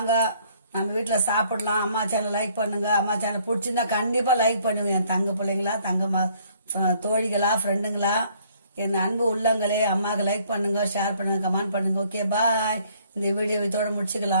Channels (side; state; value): both; inverted; correlation -0.62